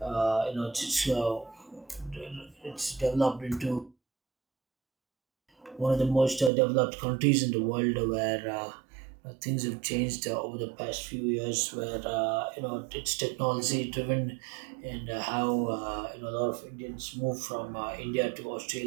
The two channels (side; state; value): left; drops out; at 6.5 s